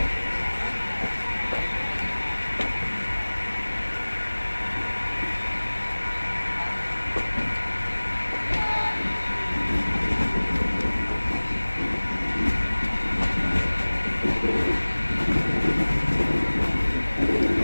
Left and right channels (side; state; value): both; inverted; correlation -1.00